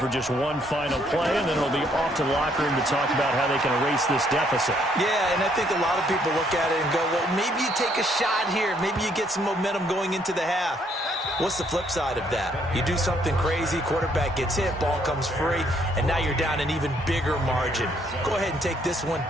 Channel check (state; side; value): normal; both; correlation 0.68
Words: just one final play, and then it'll be off to the locker room to talk about how they can erase this deficit. Yeah, and I think a lot of people look at it and go, well, maybe you take a shot here. Maybe you get some momentum going into the half. What's the flip side of that? You do something crazy, quarterback gets hit, ball comes free, and now you're down an even bigger margin. Go ahead and take this one,